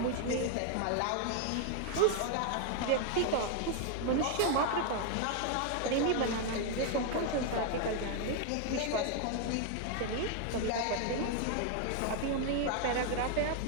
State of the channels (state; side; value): different; both; correlation 0.00